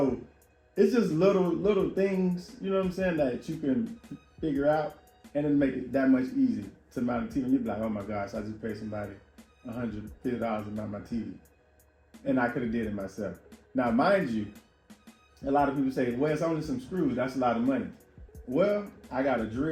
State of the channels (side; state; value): both; identical; correlation 1.00